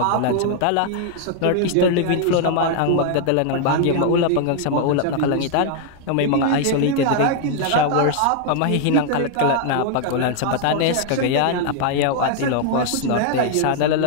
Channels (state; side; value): different; both; correlation 0.00